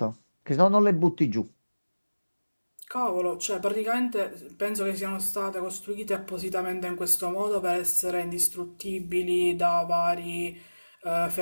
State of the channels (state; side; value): inverted; both; correlation -1.00